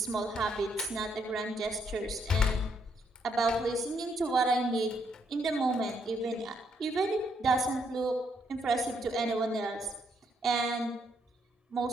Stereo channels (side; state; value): both; normal; correlation 0.73